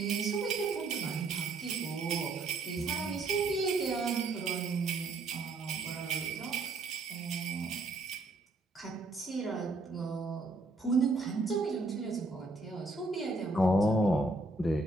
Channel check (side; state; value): left; quieter; 3.1 dB